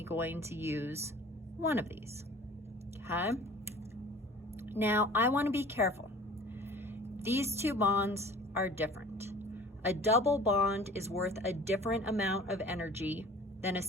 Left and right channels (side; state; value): both; normal; correlation 0.45